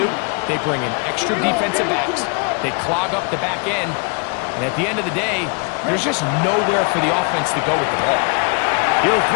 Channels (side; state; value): right; quieter; 35.2 dB